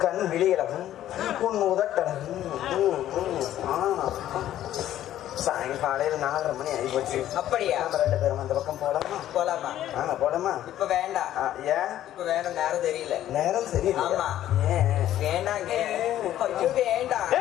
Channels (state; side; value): quieter; right; 12.4 dB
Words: கண் விழி அழகும், உன் உதட்டழகும். சாயங்காலையில் 4:30 மணி ஆகிப்போச்சு. அப்படியா? நம்ம 2 பேரும் அந்த பக்கம் போலாமா? போலாமா? போலாமா? இப்ப வேண்டாம். ஏன் இப்ப வேணும்? நேரம் தெரியல. நேரம் சரியில்லை. ஆமா. வேண்டாங்க. ஐயோ வேண்டாம்.